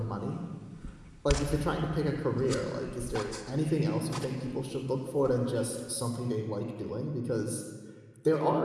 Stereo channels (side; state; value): both; identical; correlation 1.00